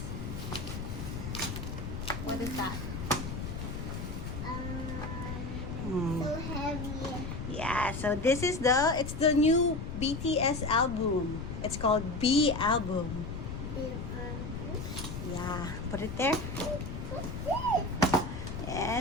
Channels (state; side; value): noise; left; rumble, 6 dB below the sound